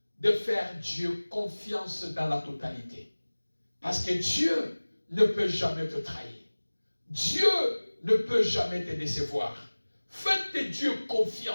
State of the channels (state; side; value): inverted; both; correlation -1.00